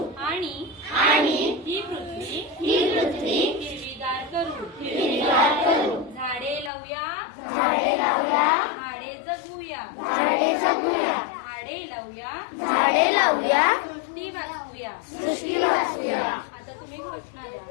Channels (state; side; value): drops out; right; at 6.7 s